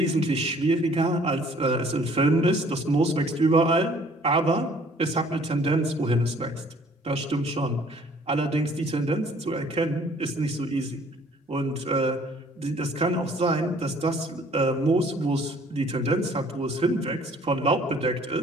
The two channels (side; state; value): both; normal; correlation 0.57